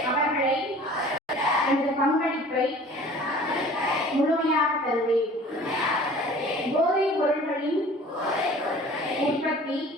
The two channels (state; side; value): normal; both; correlation 0.47